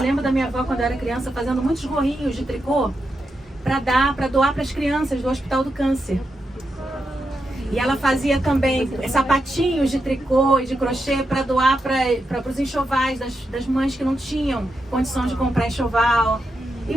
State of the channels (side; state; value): both; normal; correlation 0.86